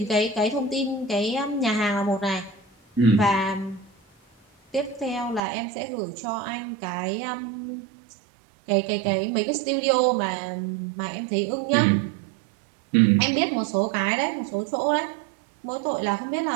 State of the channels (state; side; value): drops out; left; at 5.4 s